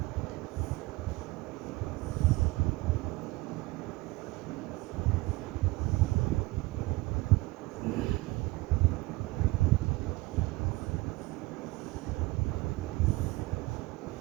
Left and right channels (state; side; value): quieter; left; 21.6 dB